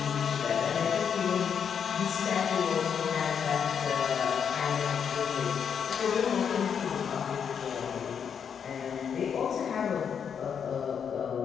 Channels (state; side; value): quieter; right; 7.4 dB